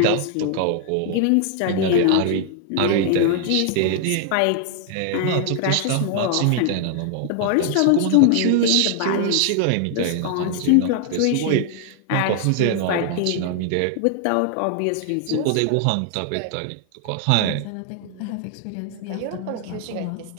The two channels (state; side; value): different; both; correlation 0.00